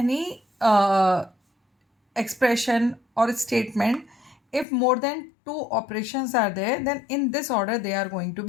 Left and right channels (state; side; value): drops out; right; at 4.7 s